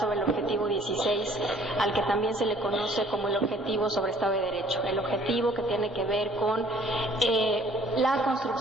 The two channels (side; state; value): both; normal; correlation 0.57